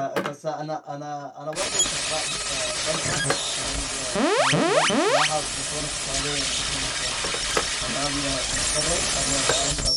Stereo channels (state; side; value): identical; both; correlation 1.00